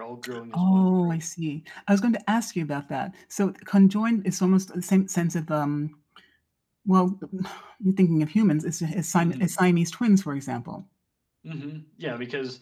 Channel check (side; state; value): both; identical; correlation 1.00